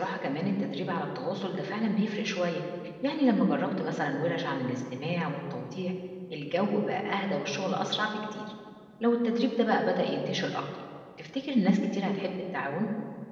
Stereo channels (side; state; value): both; identical; correlation 1.00